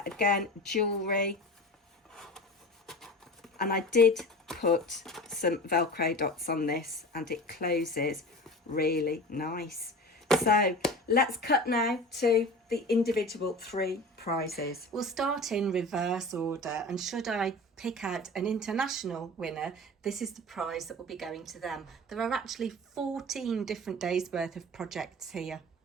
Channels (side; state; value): both; normal; correlation 0.35